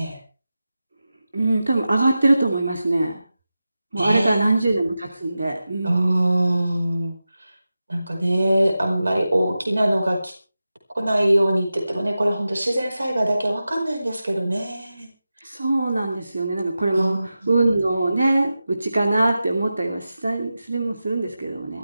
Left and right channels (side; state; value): both; inverted; correlation -0.93